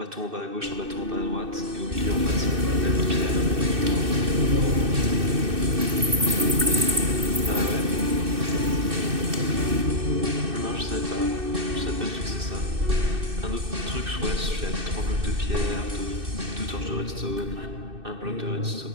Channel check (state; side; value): late; left; 2.6 ms